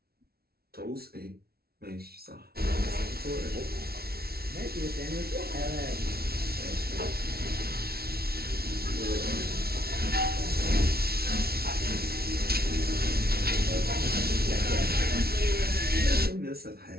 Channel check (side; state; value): left; late; 0.45 ms